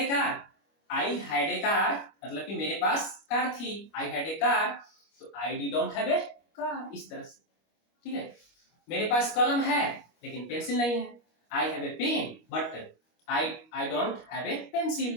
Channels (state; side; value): late; right; 25 ms